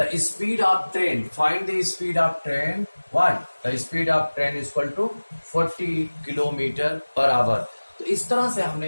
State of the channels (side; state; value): both; inverted; correlation -1.00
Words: speed of train, find the speed of train, what? The speed of train is equal to 40 kilometre per hour. तो इस तरह से हमने